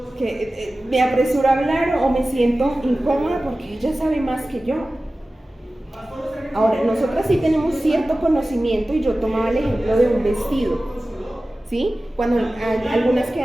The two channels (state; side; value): normal; both; correlation 0.96